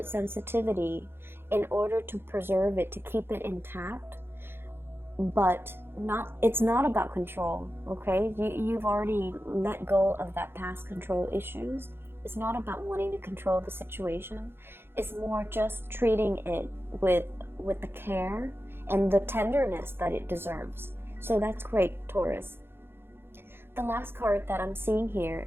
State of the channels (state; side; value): late; left; 0.11 ms